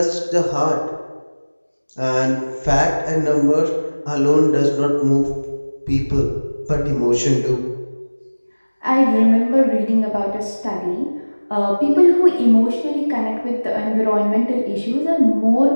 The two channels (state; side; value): inverted; both; correlation -1.00